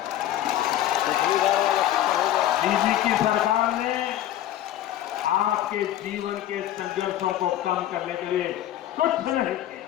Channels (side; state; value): right; quieter; 12.6 dB